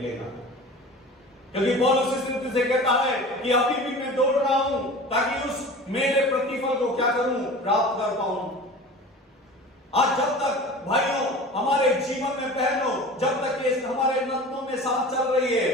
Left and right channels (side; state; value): both; normal; correlation 0.38